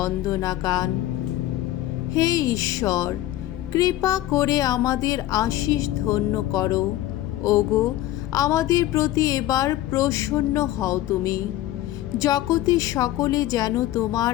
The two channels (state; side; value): quieter; right; 14.6 dB